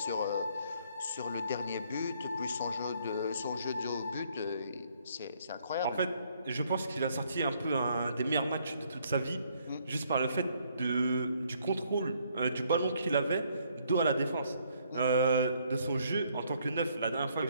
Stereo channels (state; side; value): inverted; both; correlation -0.67